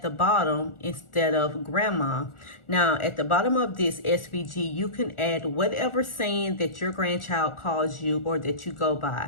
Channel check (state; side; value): late; right; 1.4 ms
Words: the bottom instead of grandma. Now at the bottom of this SVG, you can add whatever saying that your grandchild calls you or that you go by.